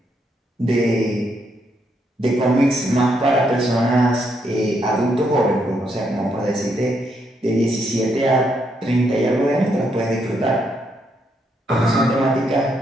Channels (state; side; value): normal; both; correlation 0.76